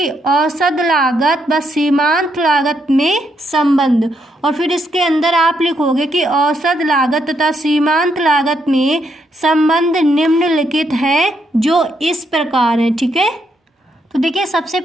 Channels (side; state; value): both; normal; correlation 0.77